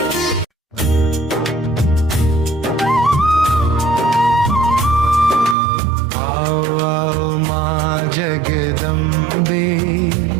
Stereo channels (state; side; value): drops out; left; at 5.6 s